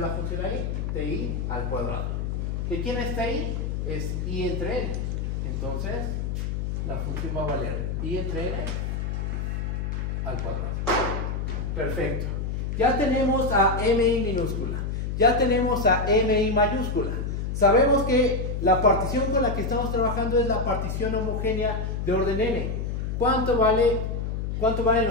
la función ahí? Ti al cuadrado. ¿De quién es ti? Es i entre n. Entonces, la función va a valer i entre n al cuadrado. Perfecto. Ya tenemos a mi minúscula. Ya tenemos a mi mayúscula. Sabemos que la partición con la que estamos trabajando es la partición homogénea de orden n. ¿Cuánto valen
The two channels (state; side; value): noise; left; hum, 2 dB below the sound